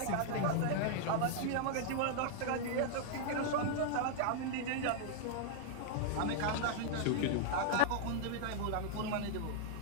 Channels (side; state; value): both; different; correlation -0.01